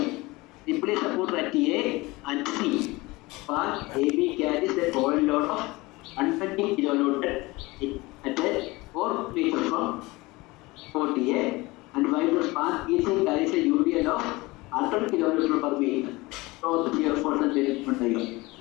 Simply support at A and C. Span AB carries a coil load of 120 kilonewton at a 4 meters from 40A, and while the span EC carries a UDL of 100 kilonewton per meter. So the shear force and displacement diagram.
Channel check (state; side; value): quieter; right; 22.1 dB